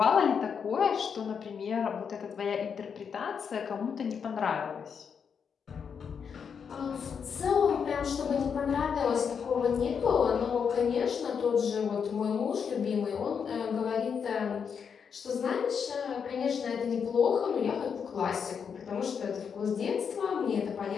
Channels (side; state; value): right; quieter; 6.7 dB